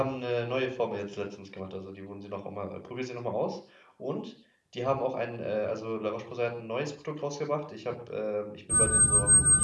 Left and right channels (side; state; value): both; identical; correlation 1.00